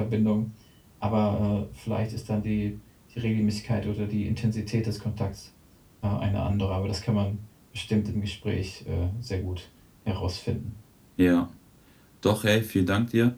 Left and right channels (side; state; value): both; identical; correlation 1.00